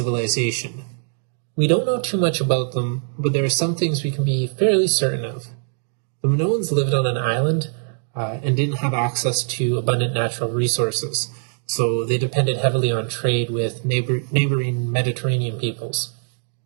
We don't know too much about them, but there are some things we can be fairly certain of. The Minoans lived on an island and didn't have access to abundant natural resources, so they depended heavily on trade with neighboring Mediterranean peoples.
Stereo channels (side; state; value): left; silent; digital silence